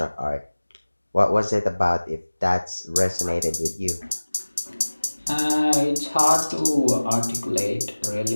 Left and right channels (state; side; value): inverted; both; correlation -1.00